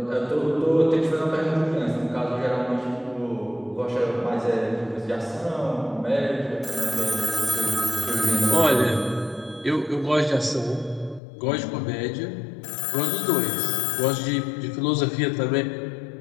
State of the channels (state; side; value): drops out; right; at 11.2 s